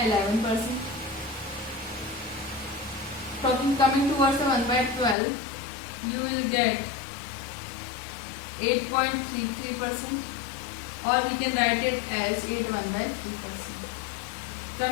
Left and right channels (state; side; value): drops out; right; at 5.2 s